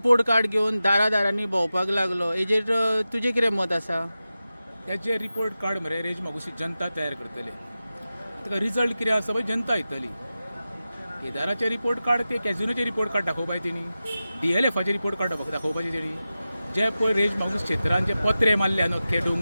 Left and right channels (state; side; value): inverted; both; correlation -0.94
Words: कार्ड घेवन दारांनी भोंवपाक लागलो. हेजेर तुजें कितें मत आसा? हेजे रिपोर्ट कार्ड मरे रेज मागुसी जनता तयार करतले. ताका रिजल्ट कितें आसा पळय जनता येतली. केदाराचे रिपोर्ट कार्ड ते कॅझिनोचे रिपोर्ट कार्ड दाखोवपाय तेणी, DLFाचे रिपोर्ट कार्ड दाखोवपाचे तेणी. जे पळय रेज मागूस क्षेत्रांत जे पत्रे मारल्या अख्खे